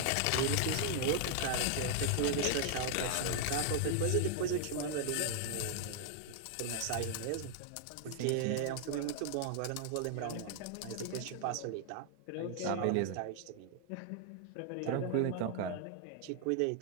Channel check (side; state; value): both; different; correlation 0.00